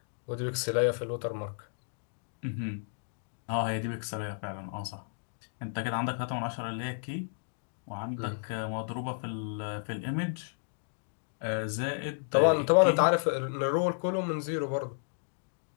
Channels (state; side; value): silent; right; digital silence